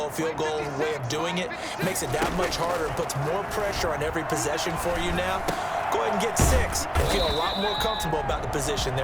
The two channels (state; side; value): identical; both; correlation 1.00